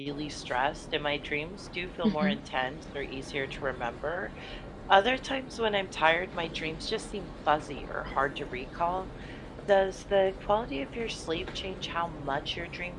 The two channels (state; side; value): identical; both; correlation 1.00